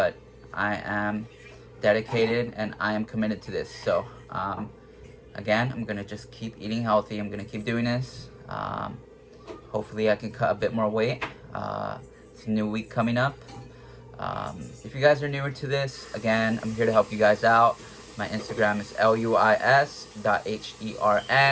I am dedicated and I am committed to this. So again, I'm gonna just keep eating healthy. I'm gonna keep doing this. Hopefully I can cut a bit more weight. It's a new week coming up. If you guys are newer to this, again, I'm here to help you guys out. My Instagram is luis.hern,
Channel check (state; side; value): identical; both; correlation 1.00